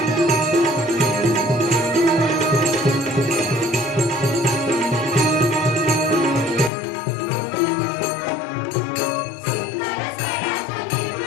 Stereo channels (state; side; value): drops out; right; at 6.7 s